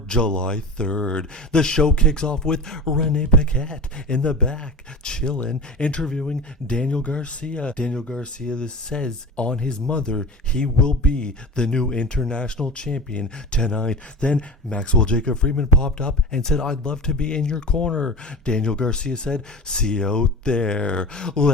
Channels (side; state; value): both; normal; correlation 0.32